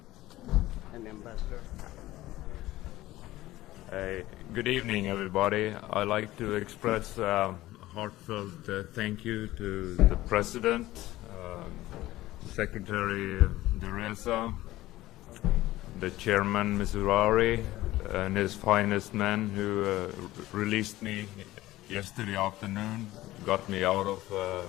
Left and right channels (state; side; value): quieter; right; 16.5 dB